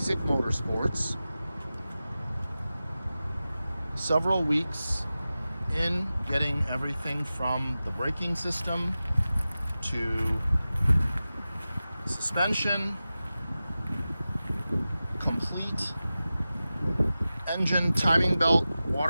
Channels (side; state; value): both; inverted; correlation -0.95